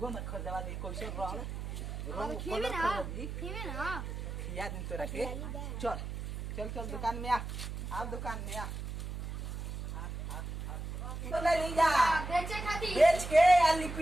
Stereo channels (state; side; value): noise; right; hum, 6 dB below the sound